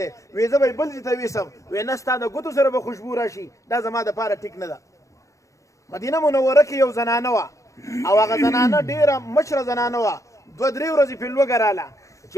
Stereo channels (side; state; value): right; late; 0.15 ms